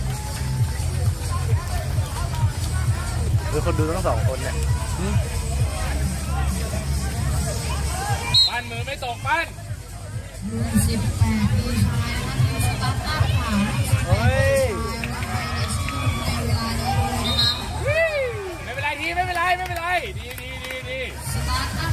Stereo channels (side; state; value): both; identical; correlation 1.00